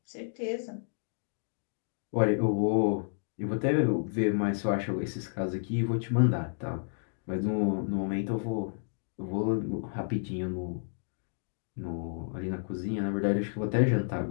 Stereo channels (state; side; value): silent; right; digital silence